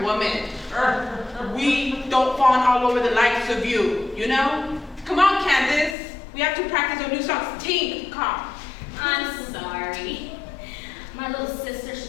women. we don't fawn all over the likes of you, you know? Come on, Candace. We have to practice our new songs. Tink, come. I'm sorry. My little sister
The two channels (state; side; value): drops out; right; at 6.0 s